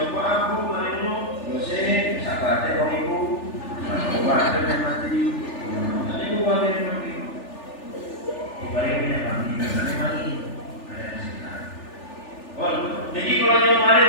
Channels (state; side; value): late; right; 3.4 ms